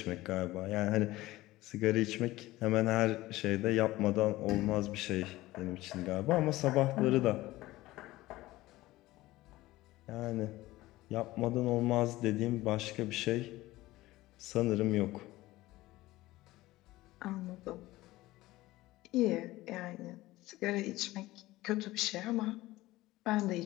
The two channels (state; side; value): quieter; right; 17.9 dB